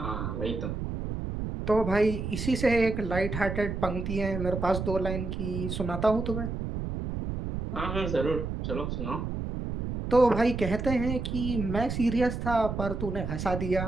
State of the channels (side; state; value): right; noise; rumble, 4 dB below the sound